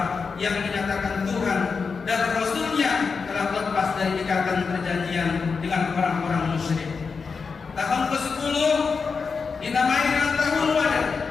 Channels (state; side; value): quieter; right; 5.1 dB